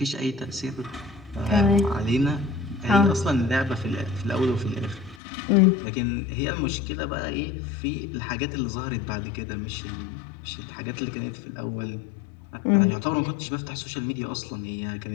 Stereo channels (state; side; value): drops out; right; at 5.2 s